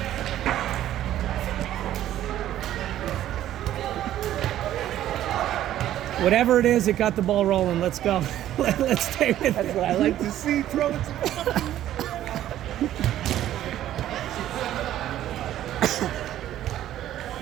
Whatever it is, it got the ball rolling. Let's go. Let's stay with it. That's what I like to see. Throw it to fucking...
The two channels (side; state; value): left; quieter; 12.5 dB